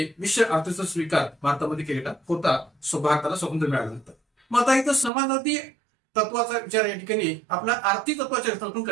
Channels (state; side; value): drops out; left; at 5.1 s